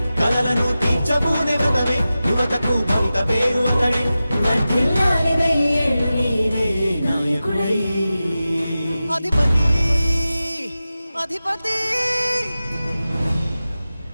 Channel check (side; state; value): both; inverted; correlation -0.94